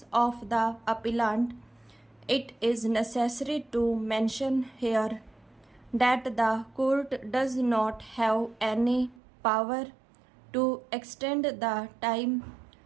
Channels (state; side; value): drops out; left; at 9.2 s